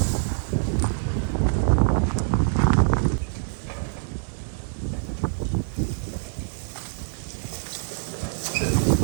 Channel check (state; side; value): silent; left; digital silence